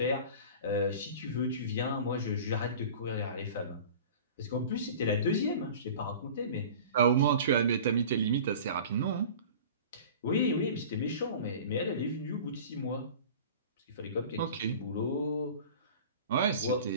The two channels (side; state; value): both; inverted; correlation -0.40